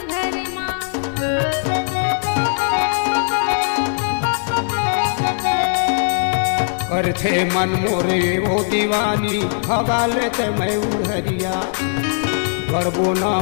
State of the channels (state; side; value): silent; right; 66 dB below the other